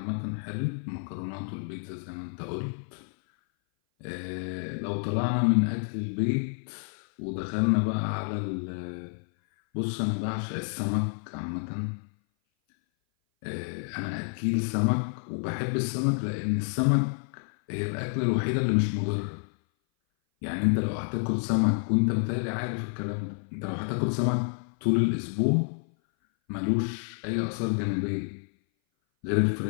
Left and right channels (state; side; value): silent; right; 57 dB below the other